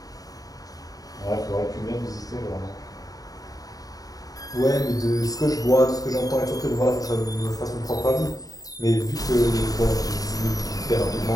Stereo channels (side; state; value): right; late; 0.18 ms